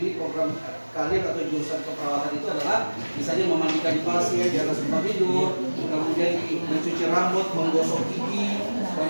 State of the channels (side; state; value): both; inverted; correlation -1.00